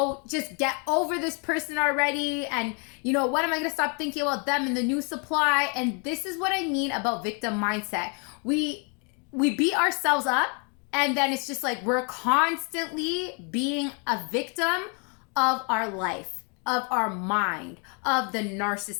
just get over this person already? And, when am I gonna stop thinking about them and the new supply? And this is what I mean about victim mindset. We beat ourselves up, and then it's just like we're constantly being a victim of our life, of our mind, of the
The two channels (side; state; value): right; quieter; 36.1 dB